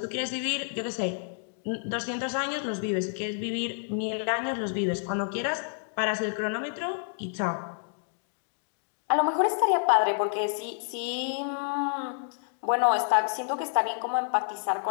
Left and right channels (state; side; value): silent; right; digital silence